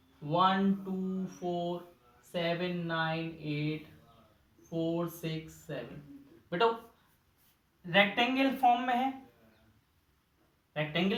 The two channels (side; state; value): both; identical; correlation 1.00